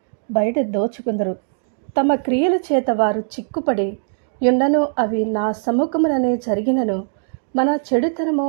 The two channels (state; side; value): silent; left; digital silence